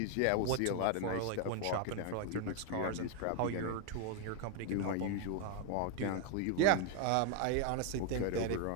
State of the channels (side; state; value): both; different; correlation 0.00